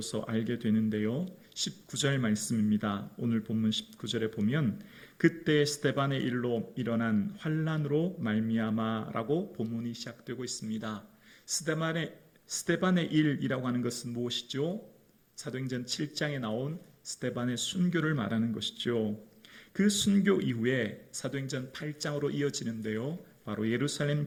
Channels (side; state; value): both; identical; correlation 1.00